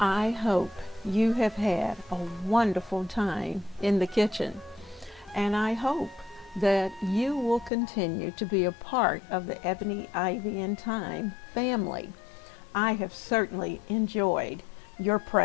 hope you have had a wonderful time in the kitchen, and I hope that you will continue to be a part of the Ebony, Ivy, and Thyme family. I have certainly enjoyed your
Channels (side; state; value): right; drops out; at 7.7 s